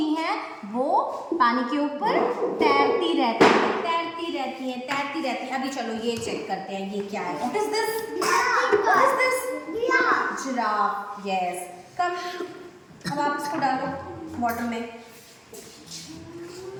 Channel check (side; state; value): both; identical; correlation 1.00